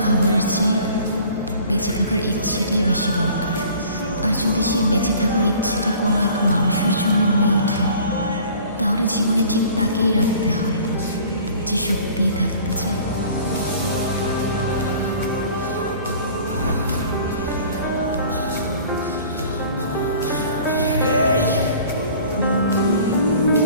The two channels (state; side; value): inverted; both; correlation -0.48